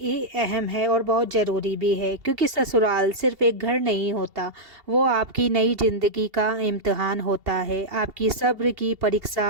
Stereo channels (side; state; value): left; late; 2.8 ms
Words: अहम है और बहुत ज़रूरी भी है, क्योंकि ससुराल सिर्फ एक घर नहीं होता। वो आपकी नई ज़िंदगी का इम्तिहान होता है, आपकी सब्र की